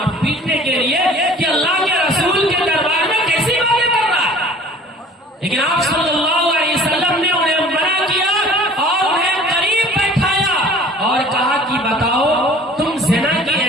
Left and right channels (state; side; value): normal; both; correlation 0.48